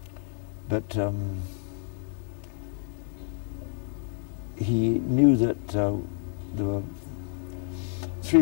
But he knew that there were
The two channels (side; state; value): right; silent; digital silence